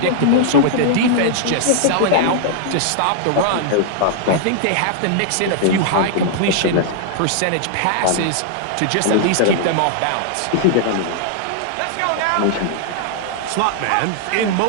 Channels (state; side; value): different; both; correlation -0.01